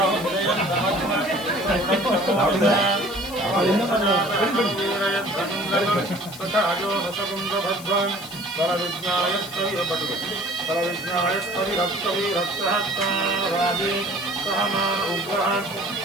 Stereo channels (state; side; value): noise; left; hiss, 16 dB below the sound